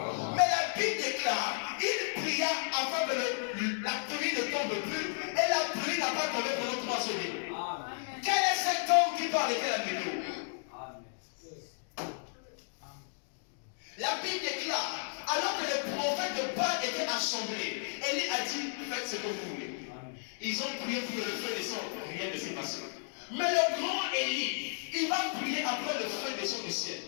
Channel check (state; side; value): silent; right; digital silence